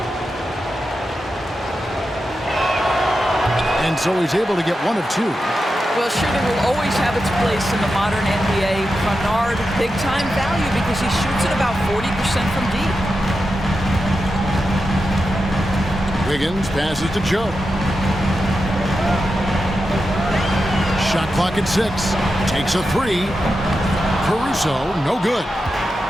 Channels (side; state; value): both; normal; correlation 0.89